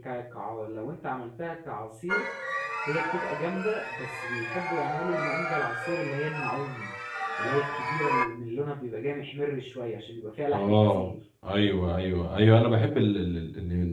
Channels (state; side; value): identical; both; correlation 1.00